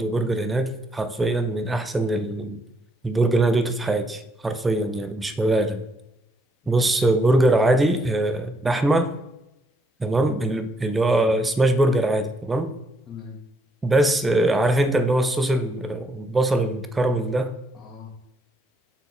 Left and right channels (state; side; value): normal; both; correlation 0.74